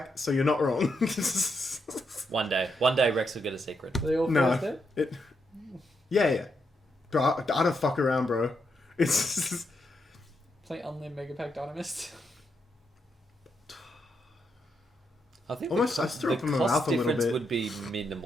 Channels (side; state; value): both; normal; correlation 0.81